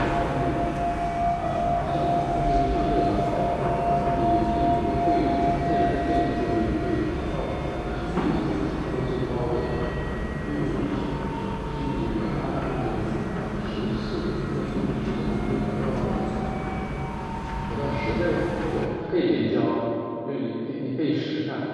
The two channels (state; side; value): identical; both; correlation 1.00